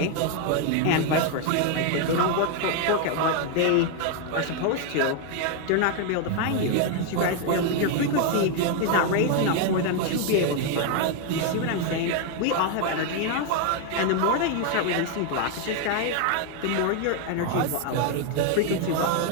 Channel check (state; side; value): different; both; correlation 0.01